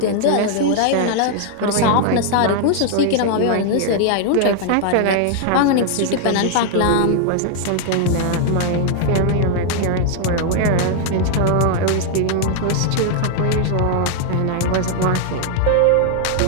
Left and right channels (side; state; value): both; different; correlation 0.00